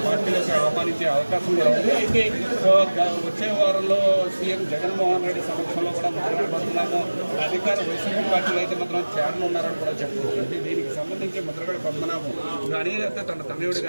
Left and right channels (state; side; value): inverted; both; correlation -1.00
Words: పార్టీలోకి ఆహ్వానించే అవకాశం కూడా ఉంది. అయితే వచ్చే వారంలో సీఎం జగన్మోహన్ రెడ్డి సమక్షంలో కూడా ముద్రగడ పద్మనాభం అధికార వైసీపీ పార్టీలో అయితే మాత్రం చేరనున్నారని కూడా చెప్తున్నారు. అంటే దీనికి సంబంధించి ముద్రగడ పద్మనాభం కానీ అయితే తన తనయుడు